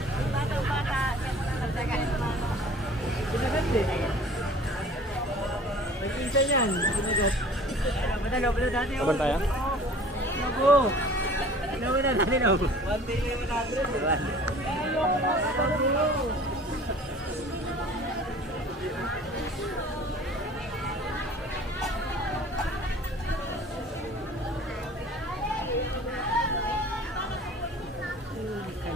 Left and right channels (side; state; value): both; normal; correlation 0.46